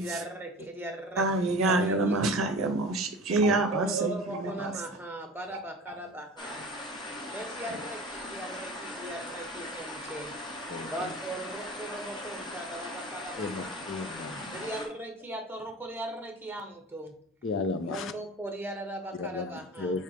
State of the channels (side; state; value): both; normal; correlation 0.37